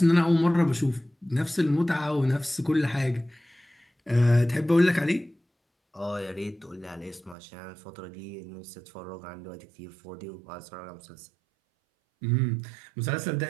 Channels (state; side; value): drops out; left; at 7.4 s